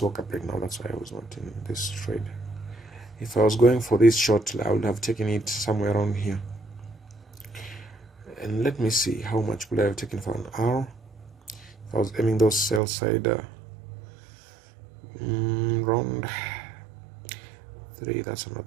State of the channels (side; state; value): left; drops out; at 12.8 s